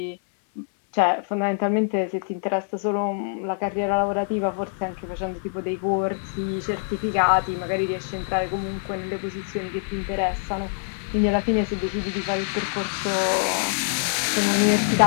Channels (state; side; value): silent; right; digital silence